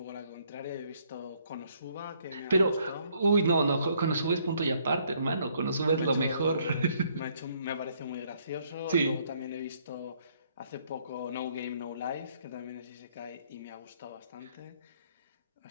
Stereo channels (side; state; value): both; inverted; correlation -0.67